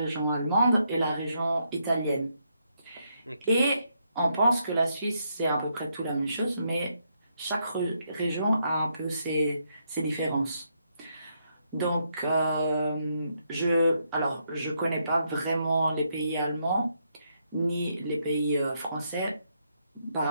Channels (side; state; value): both; inverted; correlation -0.77